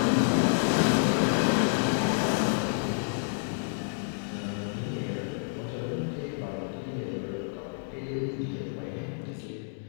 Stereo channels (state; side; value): silent; right; 59 dB below the other